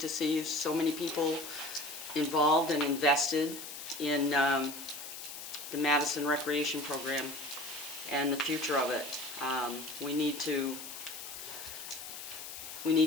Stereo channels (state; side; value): noise; left; hiss, 10 dB below the sound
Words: to see so many people involved and invested in the Madison Recreation Program and the future of it. We need to